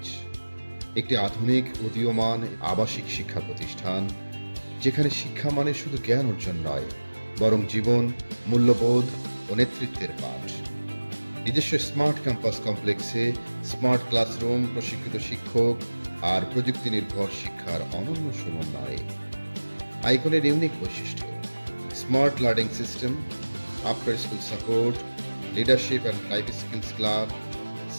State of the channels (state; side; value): inverted; both; correlation -1.00